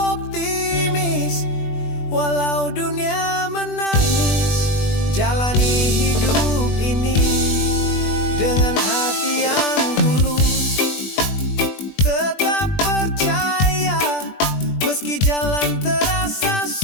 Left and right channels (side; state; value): right; late; 20 ms